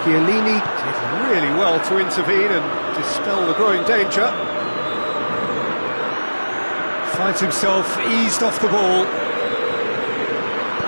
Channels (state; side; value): inverted; both; correlation -1.00